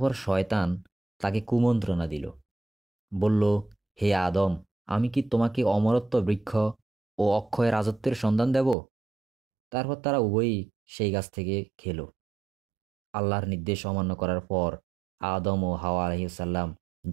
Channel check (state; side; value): drops out; left; at 8.8 s